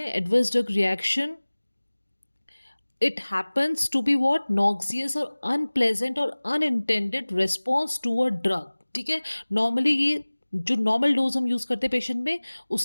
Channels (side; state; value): both; inverted; correlation -1.00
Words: adverse drug reaction, it happens to be what? Noxious or unpleasant or unintended response to a drug. ठीक है, normally ये जो normal dose हम use करते हैं पेशेंट में,